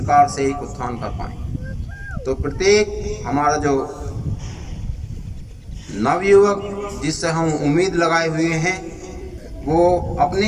से एक उत्थान कर पाएंगे। तो प्रत्येक हमारा जो नवयुवक जिससे हम उम्मीद लगाए हुए हैं, वो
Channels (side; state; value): both; identical; correlation 1.00